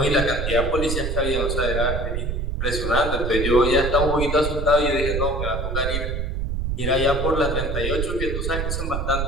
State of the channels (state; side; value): noise; right; rumble, 1 dB below the sound